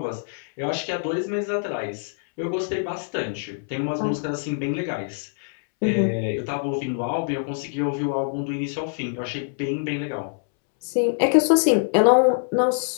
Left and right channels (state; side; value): silent; right; 62 dB below the other